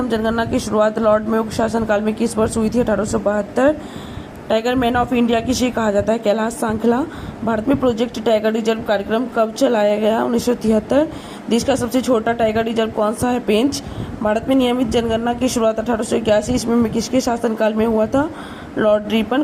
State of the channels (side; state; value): both; identical; correlation 1.00